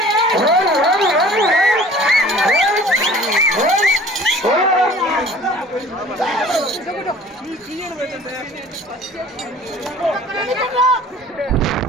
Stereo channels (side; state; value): both; normal; correlation 0.48